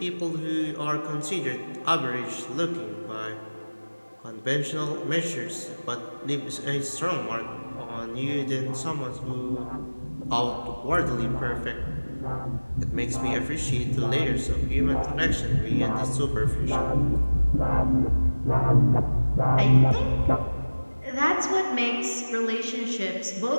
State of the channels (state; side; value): inverted; both; correlation -1.00